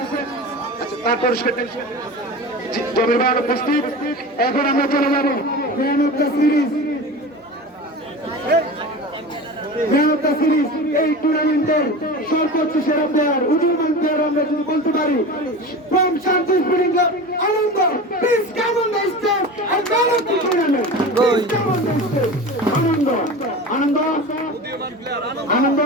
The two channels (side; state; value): both; normal; correlation 0.31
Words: তার পুরস্কার জমির ভাই উপস্থিত। এখন আমরা চলে যাবো ম্যান অফ দ্য সিরিজ। এই টুর্নামেন্টের সর্বোচ্চ সেরা প্লেয়ার, উদীয়মান প্লেয়ার আমরা যদি বলতে পারি, from Shanti spring club Anand, please come on the stage and man of the tournament. Anand